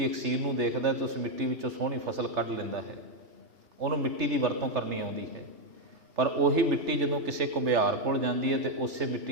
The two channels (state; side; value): late; left; 3.4 ms